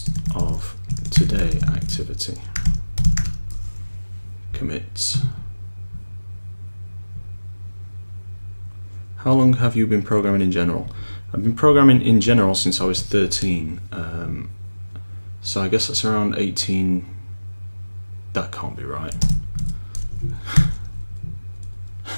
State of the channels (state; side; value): inverted; both; correlation -1.00